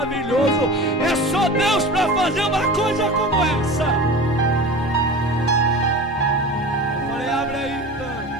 É só Deus para fazer uma coisa como essa. Eu falei: abre aí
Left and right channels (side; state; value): both; normal; correlation 0.34